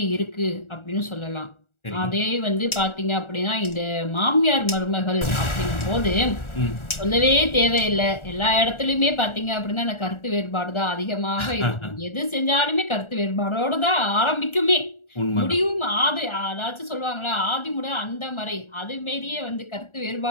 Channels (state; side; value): late; right; 1.4 ms